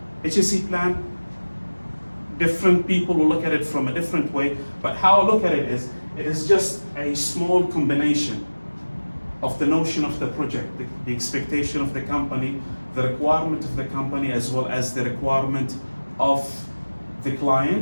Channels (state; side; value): inverted; both; correlation -1.00